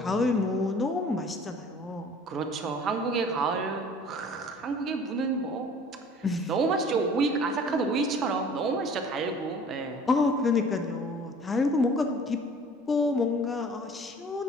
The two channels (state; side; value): normal; both; correlation 0.49